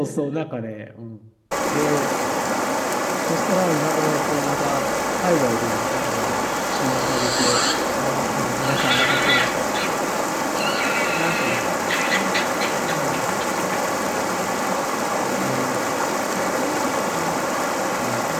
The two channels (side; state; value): both; identical; correlation 1.00